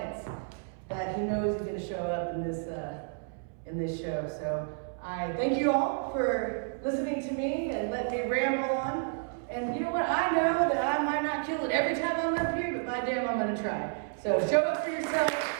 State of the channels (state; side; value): silent; left; 57 dB below the other